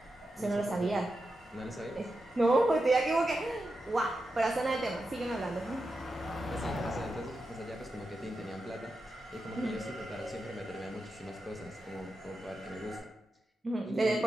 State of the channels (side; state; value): both; normal; correlation 0.89